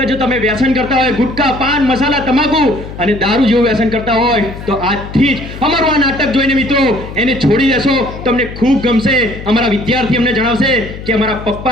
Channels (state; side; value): noise; left; hum, 12 dB below the sound